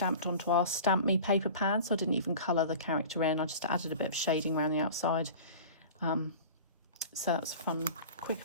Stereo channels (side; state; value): both; inverted; correlation -0.38